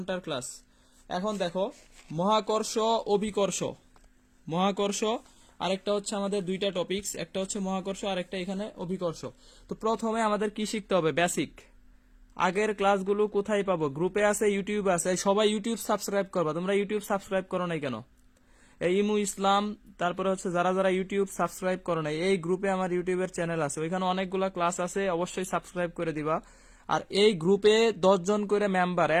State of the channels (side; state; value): both; identical; correlation 1.00